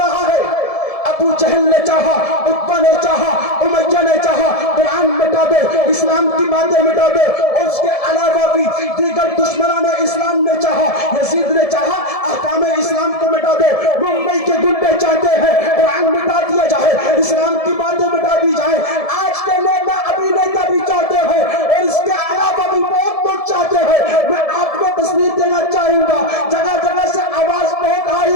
ہے. ابو جہل نے چاہا, عتبہ نے چاہا, امیہ نے چاہا قرآن مٹا دے, اسلام کی باتیں مٹا دے. اس کے علاوہ بھی دیگر دشمنان اسلام نے چاہا, یزید نے چاہا احکام اسلام کو مٹا دے. ممبئی کے گنڈے چاہتے ہیں قرآن مٹا دیا جائے, اسلام کی باتیں مٹا دی جائے. آج کے نیتا ابھی نیتا بھی چاہتے ہیں اور اس کے علاوہ بھی بہت لوگ چاہتے ہیں. میں آپ کو تصویر دینا چاہوں گا, جگہ جگہ سے آواز بہت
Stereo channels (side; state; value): right; late; 1.7 ms